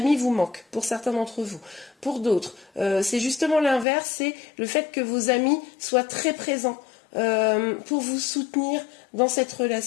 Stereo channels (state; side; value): drops out; right; at 3.9 s